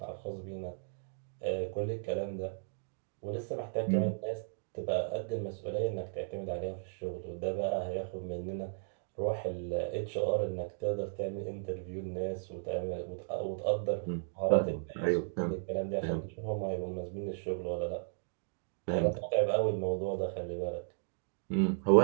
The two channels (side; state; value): left; silent; digital silence